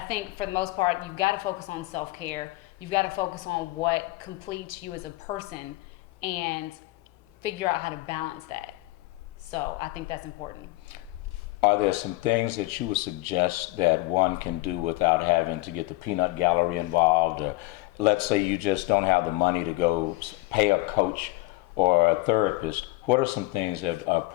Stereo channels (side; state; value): right; quieter; 20.0 dB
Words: think for the most part, you've got to focus on self-care. You've got to focus on what completes you as a person and figure out how to balance that. So I think that's important. Are there some things that you would suggest that one can do without having to get the peanut gallery involved? Or let's say you just don't have the money to go pay a coach or a therapist. What are some things that a